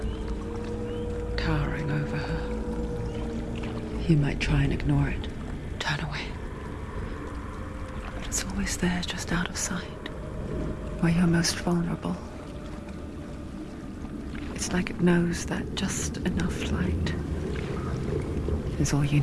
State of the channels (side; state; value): both; identical; correlation 1.00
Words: towering over her. You might try and ignore it, turn away. But it's always there, just out of sight, where you're most vulnerable. It's like it knows that just enough light is all you